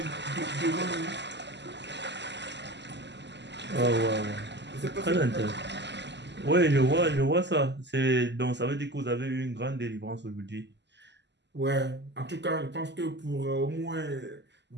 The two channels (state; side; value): late; left; 0.51 ms